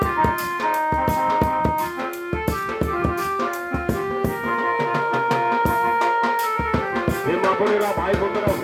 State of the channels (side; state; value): both; identical; correlation 1.00